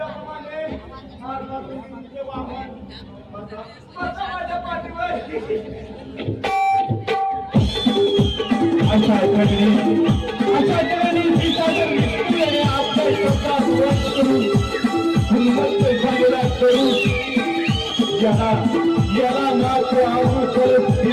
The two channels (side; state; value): both; identical; correlation 1.00